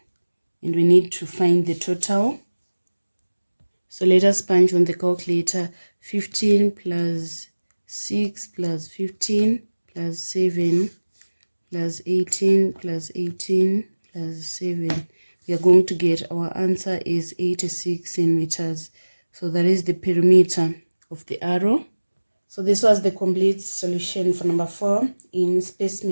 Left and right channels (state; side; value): inverted; both; correlation -1.00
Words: And we need to find the total. So let us punch on the calculator. 15 plus 6 plus 15 plus 7 plus 18 plus 18 plus 7. We are going to get our answer is 86 centimeters. So that is the perimeter of the arrow. So this was the complete solution for number 4 in